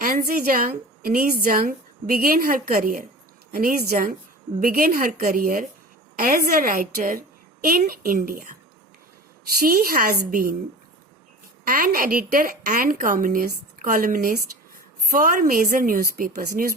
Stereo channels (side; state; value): both; normal; correlation 0.36